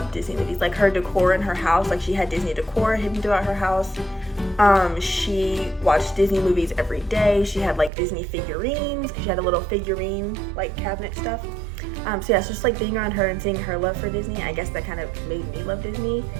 Disney movies. Like her decor in her house, like she had Disney decor hidden throughout her house. She watched Disney movies every day. She had like Disney figurines. She had a little figurine like cabinet stuff. So yeah, it's just like being around her and seeing her love for Disney, I guess that kind of made me love Disney.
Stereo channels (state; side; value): drops out; left; at 7.9 s